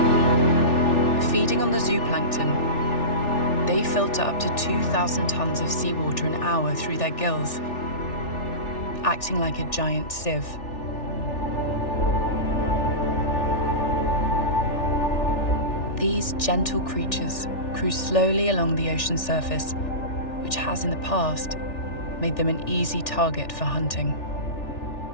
Feeding on the zooplankton, they filter up to 2,000 tons of seawater an hour through their gills, acting like a giant sieve. These gentle creatures cruise slowly along the ocean surface, which has in the past made them an easy target for hunting.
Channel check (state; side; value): late; right; 3.4 ms